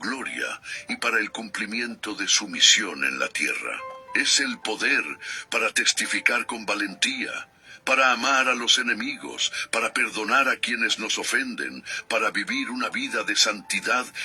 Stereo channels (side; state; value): both; identical; correlation 1.00